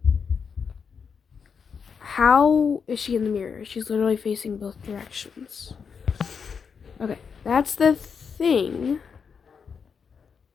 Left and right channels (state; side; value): quieter; right; 6.2 dB